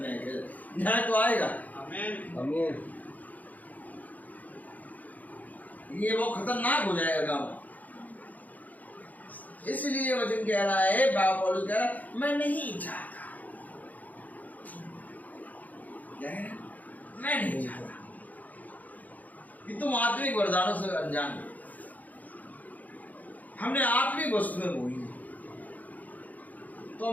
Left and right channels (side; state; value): right; late; 0.079 ms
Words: न्याय किया जाएगा। न्याय तो आएगा। आमीन। ये वो खतरनाक हो जाएगा गाँव। इसलिए वचन कह रहा है, बाबा पौलुस कह रहा है, मैं नहीं चाहता, मैं नहीं चाहता कि तुम आत्मिक वरदानों से अनजान हो। हमने आत्मिक वस्तुएं बोई तो